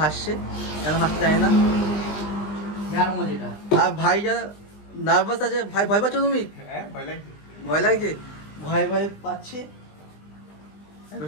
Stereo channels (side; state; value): right; late; 20 ms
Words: হাসছে, কেন হাসতে জানি না। হেয়ার মোজ এটা। আর ভাই যা নার্ভাস আছে, ভাই ভয় পাচ্ছ তুমি? ভয় লাগছে, ভয় ভয় পাচ্ছে।